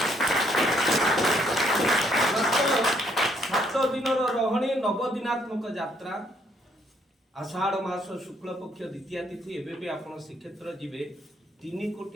7 दिन रहणी 9 दिनात्मक यात्रा आषाढ़ मास शुक्ल पक्ष द्वितीय तिथि एबे भी आपण श्रीक्षेत्र जिबे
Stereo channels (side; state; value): both; normal; correlation 0.68